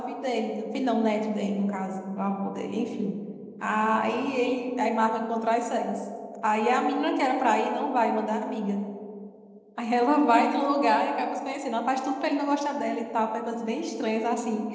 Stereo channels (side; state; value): both; identical; correlation 1.00